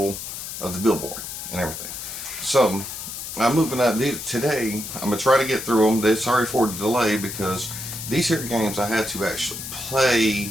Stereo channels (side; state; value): left; noise; hiss, 8 dB below the sound